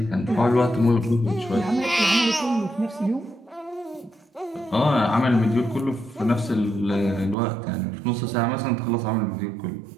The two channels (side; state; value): left; drops out; at 7.4 s